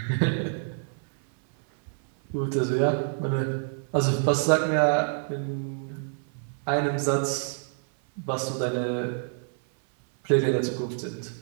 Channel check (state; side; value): silent; left; 56 dB below the other